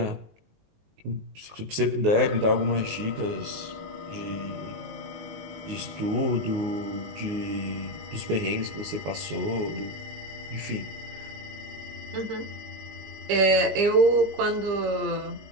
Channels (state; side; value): late; left; 19 ms